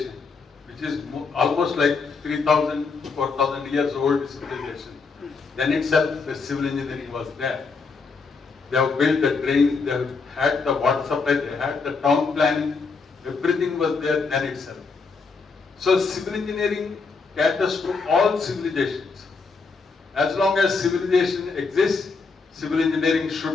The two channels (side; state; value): right; quieter; 4.6 dB